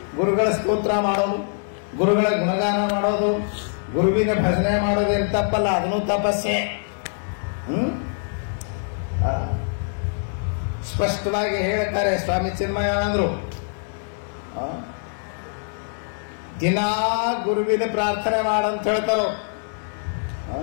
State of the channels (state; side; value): silent; right; 60 dB below the other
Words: ಗುರುಗಳ ಸ್ತೋತ್ರ ಮಾಡೋದು, ಗುರುಗಳ ಗುಣಗಾನ ಮಾಡೋದು, ಗುರುವಿನ ಭಜನೆ ಮಾಡೋದು ಏನು ತಪ್ಪಲ್ಲ, ಅದನ್ನು ತಪಸ್ಸೆ. ಸ್ಪಷ್ಟವಾಗಿ ಹೇಳ್ತಾರೆ ಸ್ವಾಮಿ ಚಿನ್ಮಯಾನಂದರು. ದಿನಾ ಗುರುವಿನ ಪ್ರಾರ್ಥನೆ ಮಾಡಂತ ಹೇಳ್ತಾರೋ.